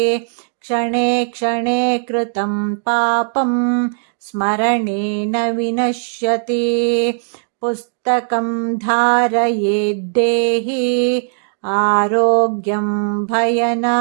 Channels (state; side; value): silent; left; digital silence